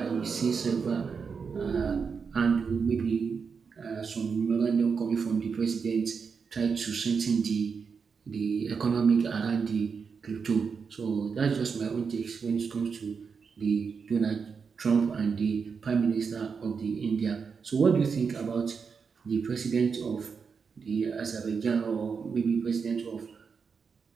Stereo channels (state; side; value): quieter; left; 5.7 dB